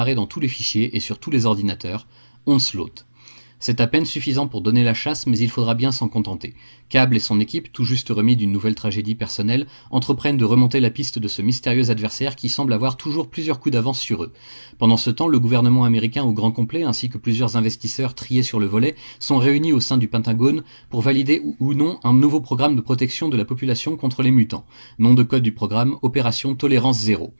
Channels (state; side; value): inverted; both; correlation -1.00